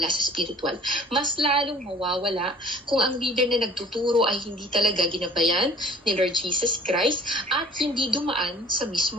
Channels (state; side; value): normal; both; correlation 0.50